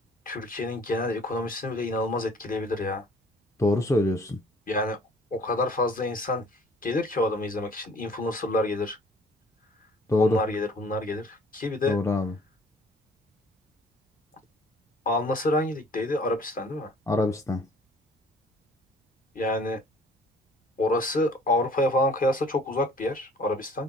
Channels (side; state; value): both; normal; correlation 0.54